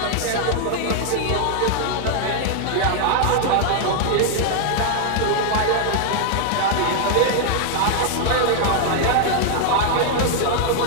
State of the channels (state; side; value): different; both; correlation 0.00